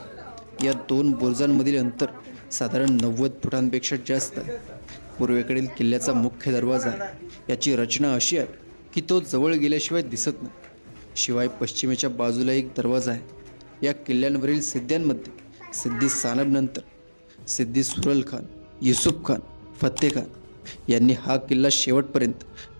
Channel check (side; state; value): both; inverted; correlation -1.00